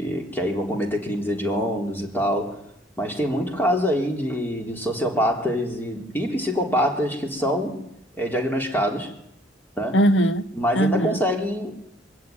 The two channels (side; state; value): both; normal; correlation 0.59